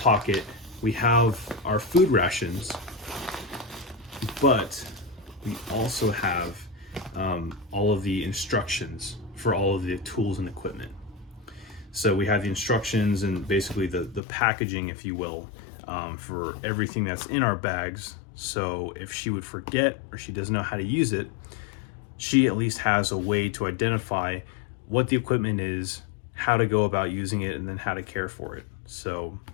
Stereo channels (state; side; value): drops out; right; at 14.2 s